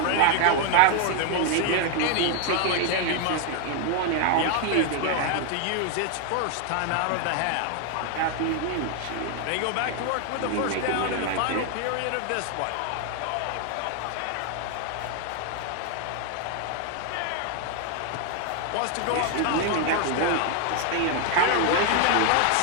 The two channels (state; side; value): different; both; correlation 0.00